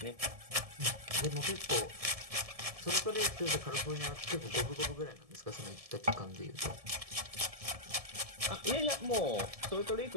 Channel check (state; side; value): late; left; 1.7 ms